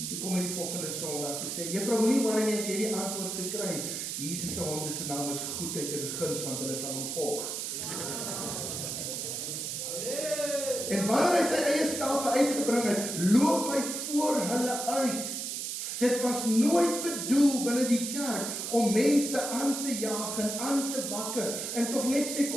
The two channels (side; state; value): right; noise; hiss, 4 dB below the sound